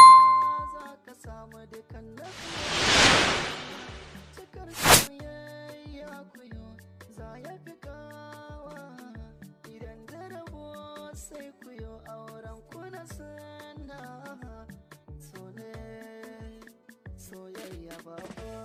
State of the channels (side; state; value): both; identical; correlation 1.00